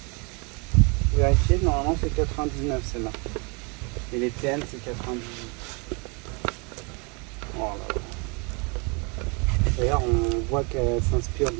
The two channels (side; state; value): left; quieter; 32.0 dB